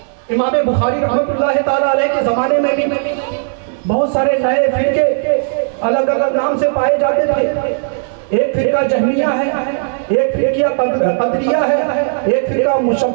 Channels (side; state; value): left; silent; digital silence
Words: امام بخاری رحمت اللہ تعالی علیہ کے زمانے میں بھی بہت سارے نئے فرقے الگ الگ نام سے پائے جاتے تھے۔ ایک فرقہ جہمیہ ہے، ایک فرقہ قدریہ ہے، ایک فرقہ